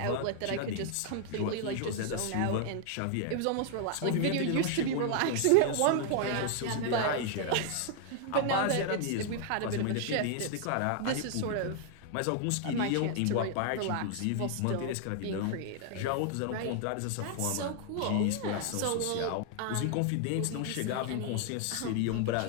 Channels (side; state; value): both; different; correlation 0.00